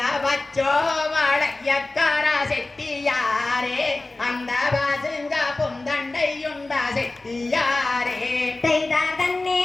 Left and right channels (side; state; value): right; quieter; 3.1 dB